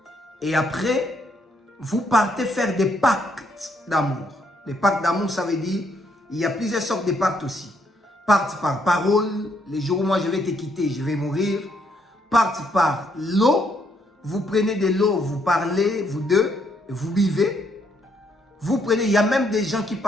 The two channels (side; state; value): both; normal; correlation 0.73